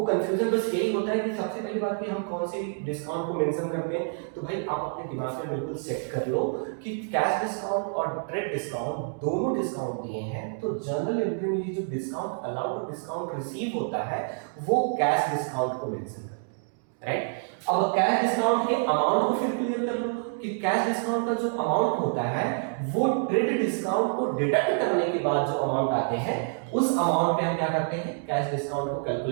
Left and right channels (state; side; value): silent; left; 60 dB below the other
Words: कंफ्यूजन बस यही होता है कि सबसे पहली बात कि हम कौन सी डिस्काउंट को मेंशन करते हैं। तो भाई आप अपने दिमाग में बिल्कुल सेट कर लो कि कैश डिस्काउंट और ट्रेड डिस्काउंट दोनों डिस्काउंट दिए हैं, तो जर्नल एंट्री में जो डिस्काउंट अलाउड और डिस्काउंट रिसीव होता है वो कैश डिस्काउंट को मेंशन करते हैं, राइट। अब कैश डिस्काउंट के अमाउंट को फिर क्लियर कर लो कि कैश डिस्काउंट का जो अमाउंट होता है वो ट्रेड डिस्काउंट को डिडक्ट करने के बाद जो अमाउंट आते हैं उस अमाउंट पे हम क्या करते हैं, कैश डिस्काउंट को